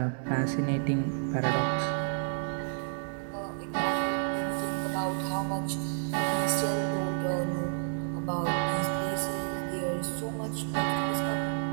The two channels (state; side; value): silent; left; 58 dB below the other